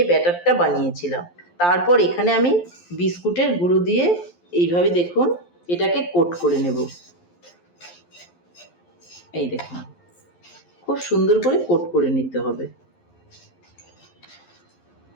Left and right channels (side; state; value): right; late; 11 ms